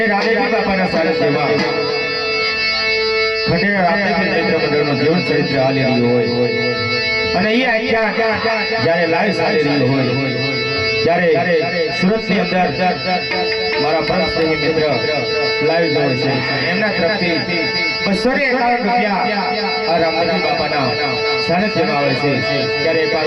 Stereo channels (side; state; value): both; identical; correlation 1.00